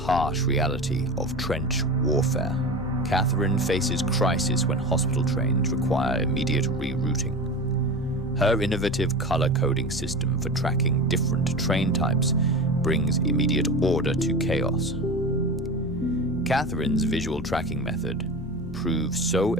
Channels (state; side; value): normal; both; correlation 0.29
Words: reality of trench warfare. Catherine faces crisis when hospital trains require immediate rerouting. Her innovative color coding system for tracking different train types brings immediate order to chaos. Catherine's visual tracking method proves so